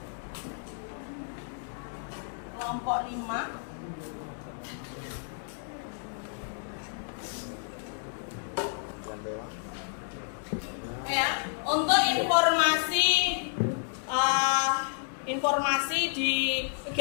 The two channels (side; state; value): right; silent; digital silence